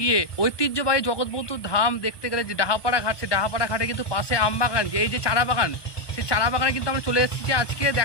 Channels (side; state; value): right; late; 1.2 ms